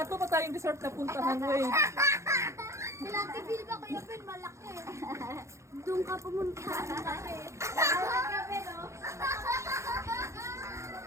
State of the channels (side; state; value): left; late; 0.14 ms